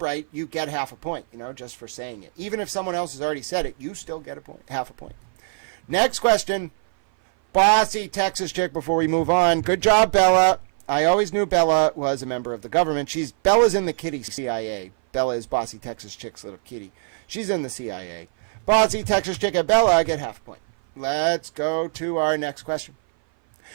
you get half a point, just for saying it. Even if someone else has already said it, you still get a point, half a point. Next question. Bossy Texas chick before we move on. Good job, Bella. I always knew Bella was a member of the government. Bella's in the kitty CIA. Bella is Bossy Texas chick's little kitty. She's in the CIA. Bossy Texas chick and Bella, I get half a point. Let's go to our next question.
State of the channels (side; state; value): left; silent; 57 dB below the other